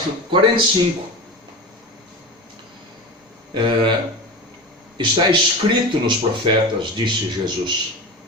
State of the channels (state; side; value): normal; both; correlation 0.28